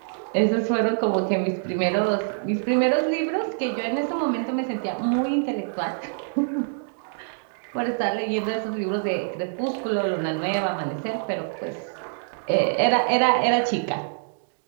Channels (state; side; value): silent; left; digital silence